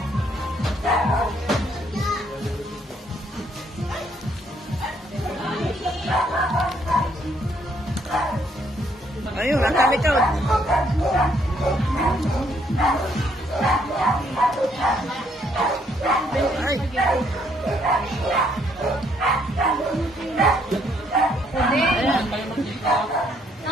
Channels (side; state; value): both; normal; correlation 0.69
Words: Ayun, ang kami ko. Ay.